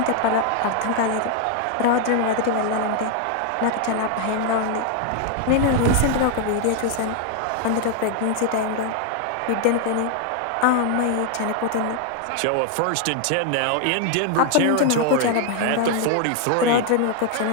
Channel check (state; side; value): different; both; correlation 0.00